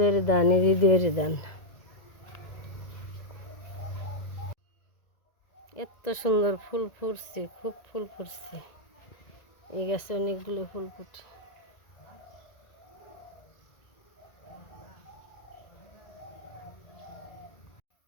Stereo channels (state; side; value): late; right; 1.9 ms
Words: ধান, এই জিদুয়ের ধান। এত সুন্দর ফুল ফুটছে, খুব ফুল ফুটছে। এই গাছে অনেকগুলো ফুল ফুটে।